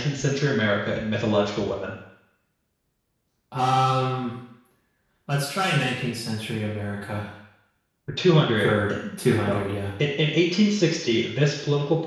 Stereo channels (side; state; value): both; identical; correlation 1.00